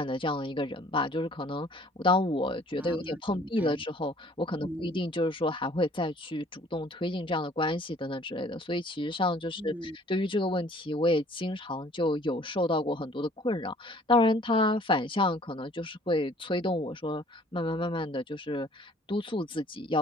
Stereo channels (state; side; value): normal; both; correlation 0.55